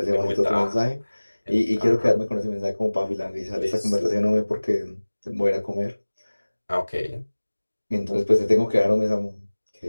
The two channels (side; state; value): both; inverted; correlation -1.00